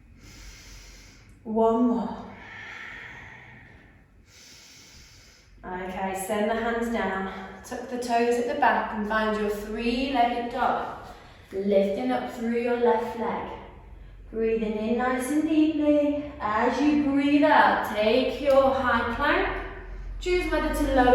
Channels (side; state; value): both; identical; correlation 1.00